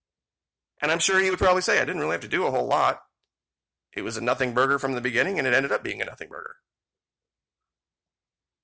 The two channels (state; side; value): identical; both; correlation 1.00